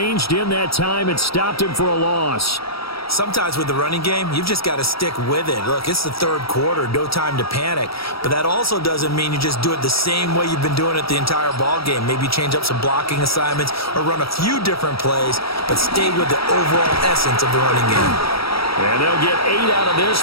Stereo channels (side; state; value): right; late; 0.76 ms